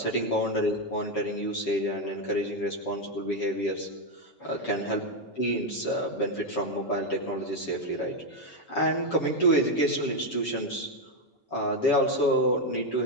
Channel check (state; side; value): late; right; 7.1 ms